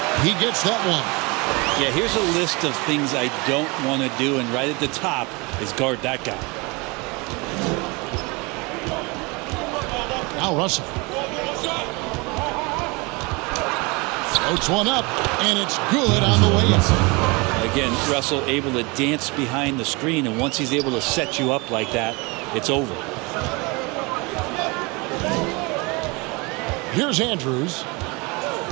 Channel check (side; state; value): left; quieter; 27.1 dB